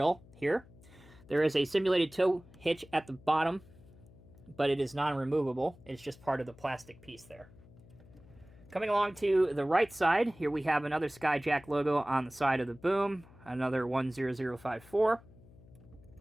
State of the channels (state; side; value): noise; left; hum, 23 dB below the sound